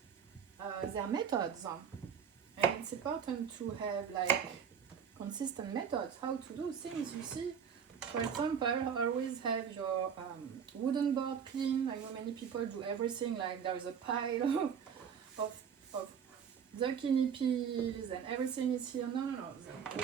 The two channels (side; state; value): left; quieter; 7.4 dB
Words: their methods. And it's important to have like consistent methods, how to do things. You see, for example, always have your wooden board clean. I know many people do everything like there is a pile of zucchini peels and everything is here. No, the